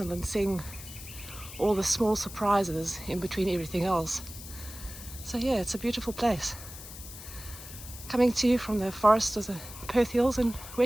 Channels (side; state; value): left; noise; hiss, 13 dB below the sound